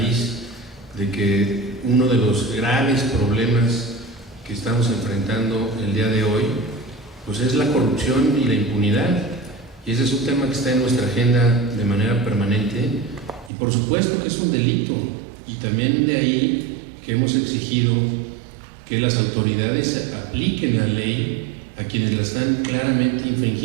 de que uno de los graves problemas que estamos enfrentando el día de hoy, pues es la corrupción y la impunidad, y ese es un tema que está en nuestra agenda de manera permanente, y por supuesto que es un delito, y también de ahí que hemos exigido que las autoridades apliquen la ley a quienes la están claramente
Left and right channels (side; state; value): left; drops out; at 13.5 s